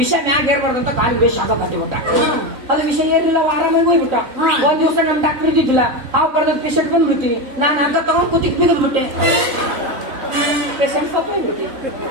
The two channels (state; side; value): late; left; 3.8 ms